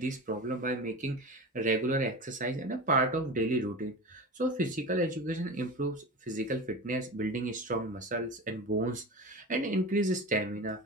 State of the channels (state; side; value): normal; both; correlation 0.29